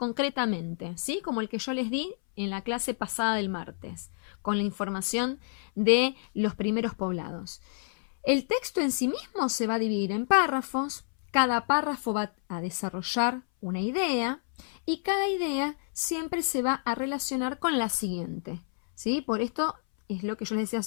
¿sí?, como el que yo les di en la clase pasada del martes, con la información de los primeros poblados. El texto en sí mismo se va a dividir en párrafos, cada párrafo va a desarrollar una idea y cada idea siempre se va a relacionar con la siguiente, ¿sí? Por esto es lo que yo les decía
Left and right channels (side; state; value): right; silent; 58 dB below the other